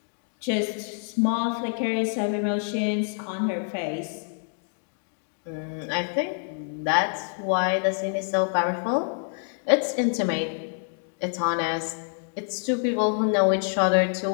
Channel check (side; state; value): right; silent; 59 dB below the other